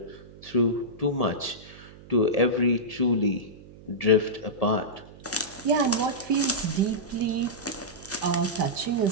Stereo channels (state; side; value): noise; right; hum, 20 dB below the sound